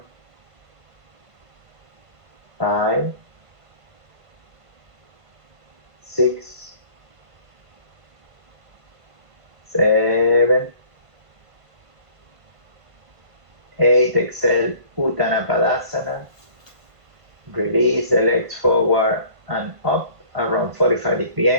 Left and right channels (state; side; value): late; left; 1.5 ms